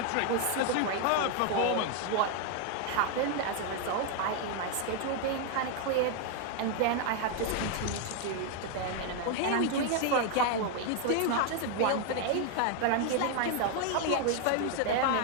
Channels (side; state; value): both; different; correlation 0.00